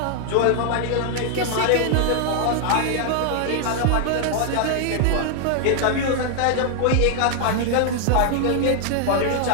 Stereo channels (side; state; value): both; different; correlation 0.00